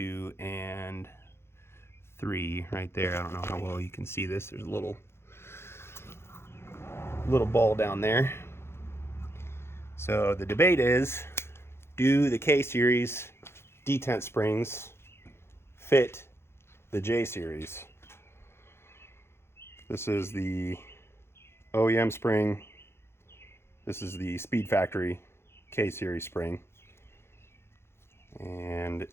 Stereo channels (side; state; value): right; late; 0.12 ms